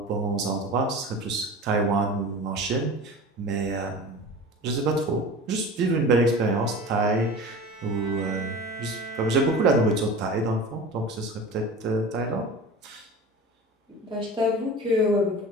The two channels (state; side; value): normal; both; correlation 0.35